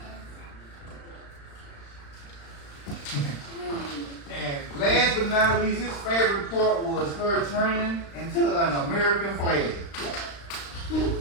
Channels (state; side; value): late; right; 35 ms